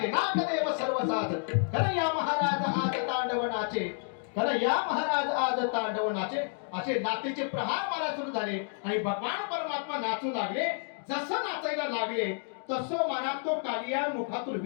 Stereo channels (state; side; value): silent; right; 58 dB below the other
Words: नागदेव सर्व साज. कन्हैया महाराज आज तांडव नाचे, कन्हैया महाराज आज तांडव नाचे. असे नातेचे प्रहार मला सुरू झाले आणि भगवान परमात्मा नाचू लागले. जसं नाचायला लागले तसं मनात तो कालिया मुखातून